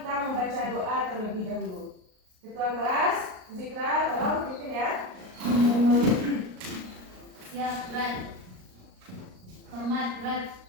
membaca doa terlebih dahulu. Ketua kelas, Zikra, tolong pimpin ya. Siap, berat. Hormat, berat.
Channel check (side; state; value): left; late; 38 ms